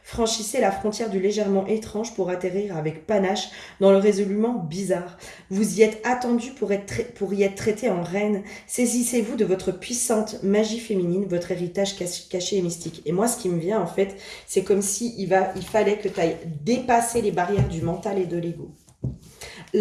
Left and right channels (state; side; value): identical; both; correlation 1.00